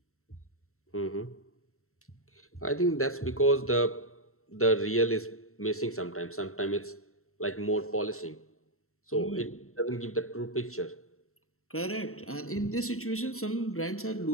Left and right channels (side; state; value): right; late; 0.63 ms